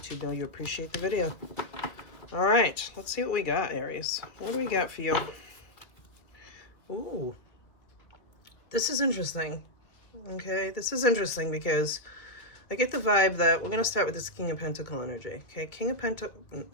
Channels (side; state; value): right; late; 2.3 ms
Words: know you appreciate the video. Alright, let's see what we got, Aries. What do we got for you? Ooh, this is interesting. Okay, this is interesting because I get the vibe that we're going to start with this King of Pentacle energy. Okay,